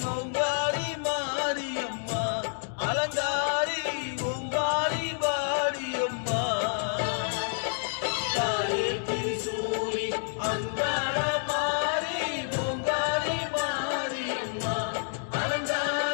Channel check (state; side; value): silent; right; digital silence